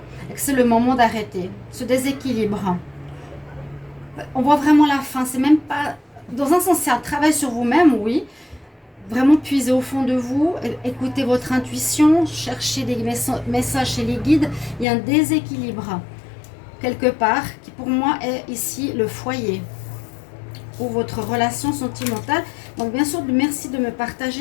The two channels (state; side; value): drops out; right; at 14.9 s